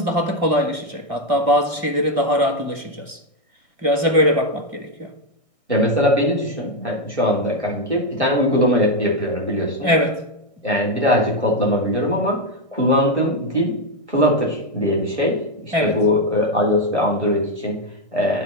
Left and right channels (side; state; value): left; late; 1.6 ms